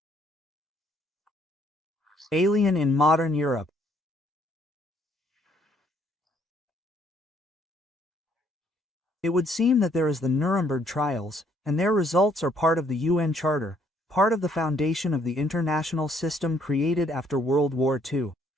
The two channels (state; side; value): normal; both; correlation 0.66